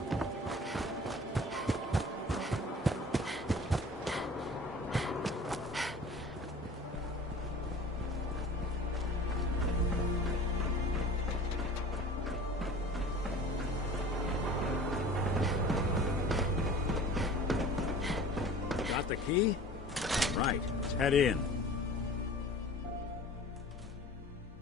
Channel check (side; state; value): both; normal; correlation 0.42